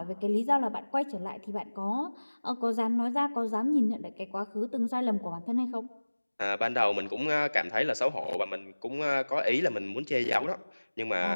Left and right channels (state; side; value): inverted; both; correlation -1.00